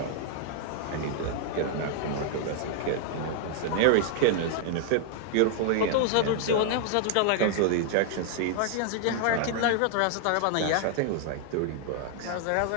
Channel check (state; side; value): different; both; correlation 0.00